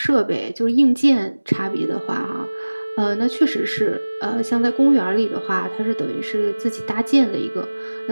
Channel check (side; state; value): both; inverted; correlation -1.00